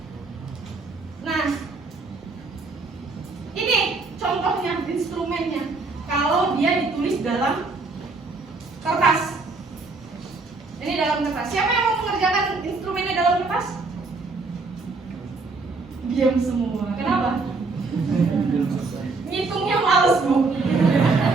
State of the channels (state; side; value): quieter; left; 3.8 dB